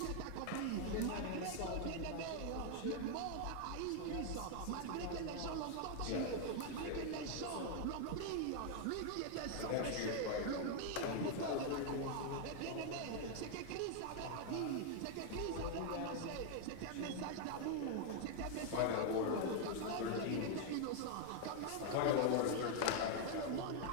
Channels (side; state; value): both; different; correlation 0.00